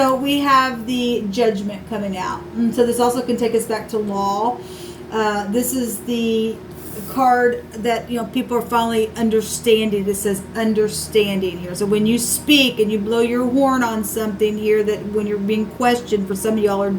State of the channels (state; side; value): identical; both; correlation 1.00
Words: we have the judgment coming out. And so this also can take us back to law. This is the card that people are finally understanding. It says understanding here. So when you speak and you blow your horn on something here, that when you're being questioned, for some of y'all are